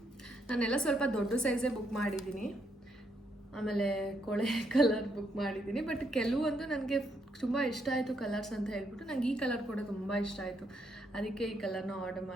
ನಾನೆಲ್ಲ ಸ್ವಲ್ಪ ದೊಡ್ಡ ಸೈಜೇ ಬುಕ್ ಮಾಡಿದ್ದೀನಿ. ಆಮೇಲೆ ಕೊಳೆ ಕಲರ್ ಬುಕ್ ಮಾಡಿದ್ದೀನಿ. ಬಟ್ ಕೆಲವೊಂದು ನನಗೆ ತುಂಬ ಇಷ್ಟ ಆಯಿತು ಕಲರ್ಸ್ ಅಂತ ಹೇಳ್ಬಿಟ್ಟು, ನನಗೆ ಈ ಕಲರ್ ಕೂಡ ತುಂಬ ಇಷ್ಟ ಆಯಿತು, ಅದಕ್ಕೆ ಈ ಕಲರ್ನ ಆರ್ಡರ್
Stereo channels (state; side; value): normal; both; correlation 0.76